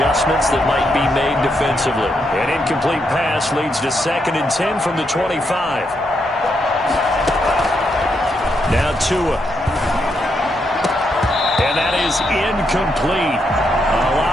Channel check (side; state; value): both; normal; correlation 0.80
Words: that might be made defensively. An incomplete pass leads to 2nd and 10 from the 25. Now Tua. And that is incomplete. A